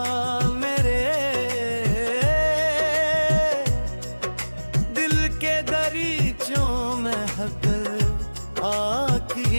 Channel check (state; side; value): inverted; both; correlation -1.00